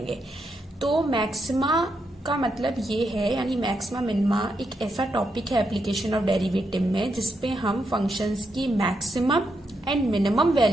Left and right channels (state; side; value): normal; both; correlation 0.82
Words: तो मैक्सिमा का मतलब ये है, यानी मैक्सिमा मिनिमा एक ऐसा टॉपिक है एप्लीकेशन ऑफ डेरिवेटिव में जिसपे हम फंक्शंस की मैक्सिमम एंड मिनिमम